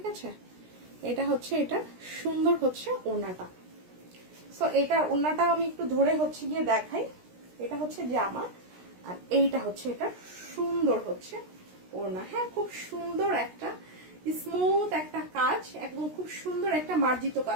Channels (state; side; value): late; left; 16 ms